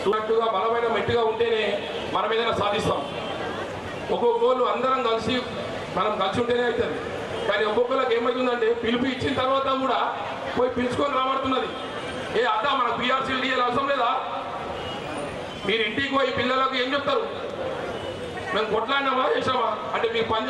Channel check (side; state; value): both; identical; correlation 1.00